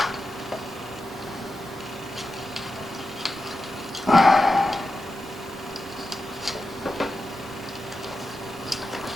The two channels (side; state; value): both; normal; correlation 0.90